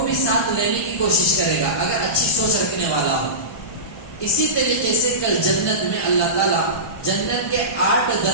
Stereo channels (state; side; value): late; right; 1.2 ms